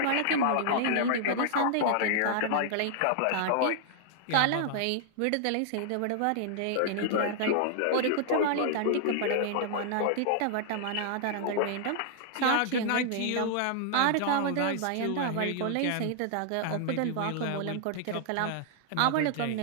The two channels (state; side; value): different; both; correlation -0.01